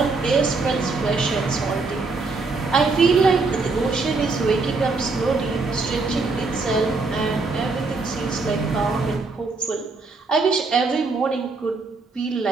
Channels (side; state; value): left; quieter; 3.9 dB